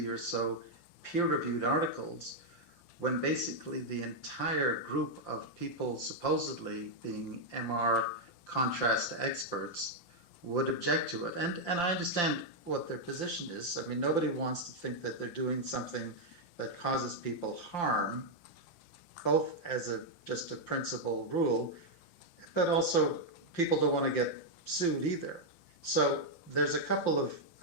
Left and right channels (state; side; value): late; right; 5.8 ms